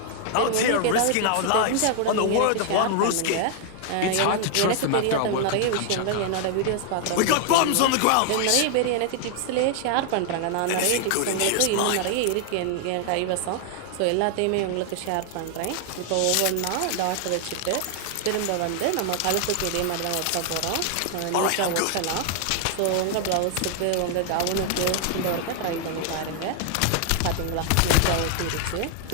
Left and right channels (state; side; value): different; both; correlation 0.00